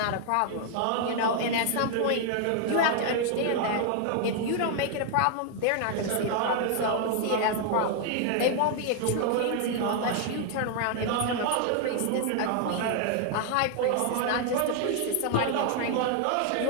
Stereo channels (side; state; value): both; different; correlation 0.00